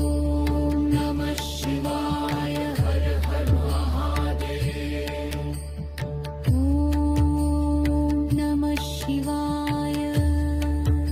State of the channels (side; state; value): both; identical; correlation 1.00